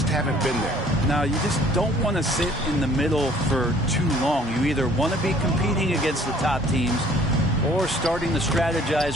haven't been there. Now, you just don't want to sit in the middle for too long. You either want to be competing against the top teams or starting to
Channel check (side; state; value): both; normal; correlation 0.56